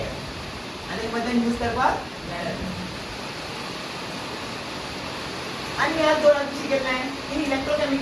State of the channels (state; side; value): identical; both; correlation 1.00